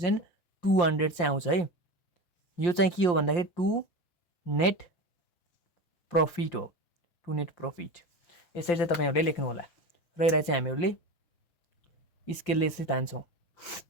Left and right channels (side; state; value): right; late; 5.7 ms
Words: चाहिँ आउँछ है। यो चाहिँ के हो भन्दाखेरि टु नेट प्रॉफिट हो, टु नेट प्रॉफिट। यसरी चाहिँ तपाईँहरूले लेख्नु होला र यसलाई चाहिँ हामीहरूले स्केलले चाहिँ तान्छौँ।